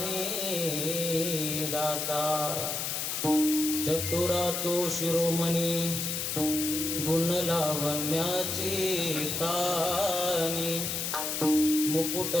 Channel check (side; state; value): left; noise; hiss, 2 dB below the sound